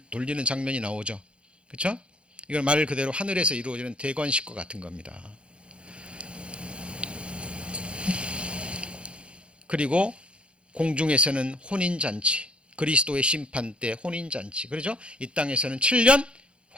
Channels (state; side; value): late; left; 0.058 ms